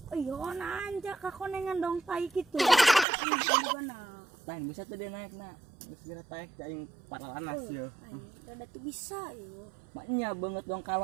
Iya, nanja kakonengan dong tai gitu. Gimana? lain bisa tuh dia naik na geus geura taek aing paralanas ya Ada tuh bisa yo. maknya banget dong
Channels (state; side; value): drops out; left; at 3.1 s